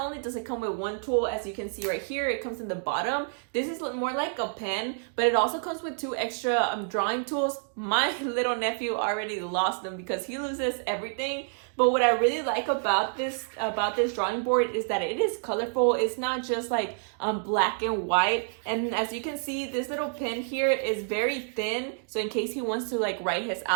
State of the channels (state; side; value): silent; left; digital silence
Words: does it come with one tool, as you can see right here, it comes in the bottom. This is more like a pen, but it also comes with two extra drawing tools. My little nephew already lost them because he loses everything. But what I really like about this drawing board is that it is colorful. It's not just like black and white. And as you can see, this little pen here is very thin. So in case he wants to like write his